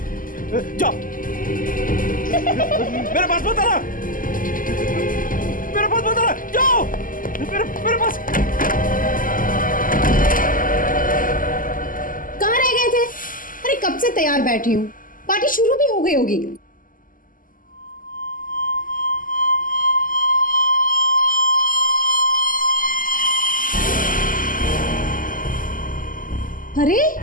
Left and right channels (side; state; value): right; late; 0.40 ms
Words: जाओ। मेरे पास मत आना, मेरे पास मत आना, जाओ। मेरे पास। कहाँ रह गए थे? अरे कब से तैयार बैठी हूँ, पार्टी शुरू भी हो गई होगी। अरे